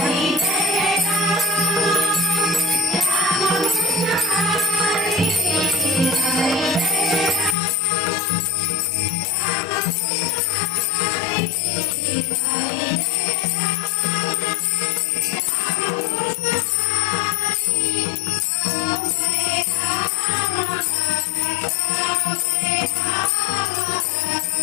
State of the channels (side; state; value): right; drops out; at 7.6 s